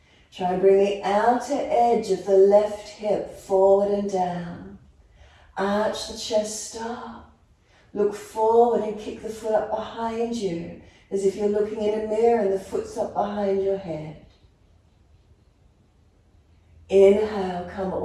Try and bring the outer edge of the left hip forward and down. Arch the chest up. Look forward and kick the foot up behind you, as if you're looking in a mirror and the foot's up behind your head. Inhale, come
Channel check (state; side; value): identical; both; correlation 1.00